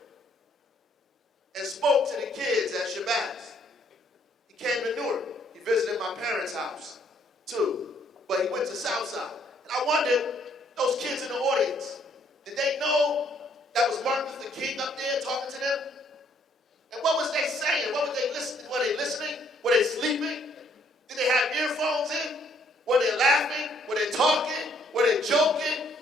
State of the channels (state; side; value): normal; both; correlation 0.66